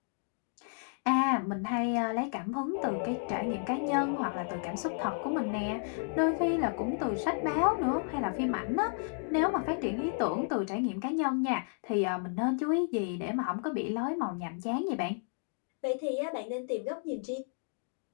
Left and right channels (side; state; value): right; silent; 56 dB below the other